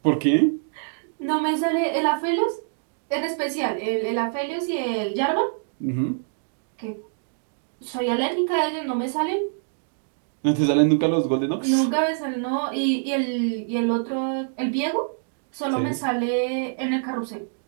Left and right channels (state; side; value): silent; left; digital silence